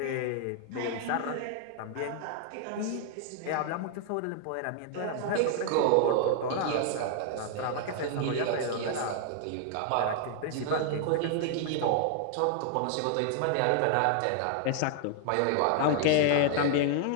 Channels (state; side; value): different; both; correlation 0.00